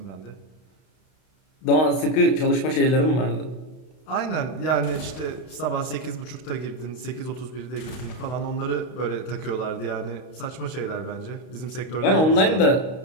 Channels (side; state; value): right; late; 32 ms